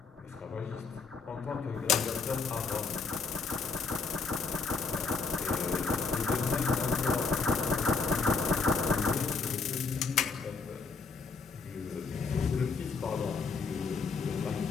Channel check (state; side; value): quieter; right; 4.9 dB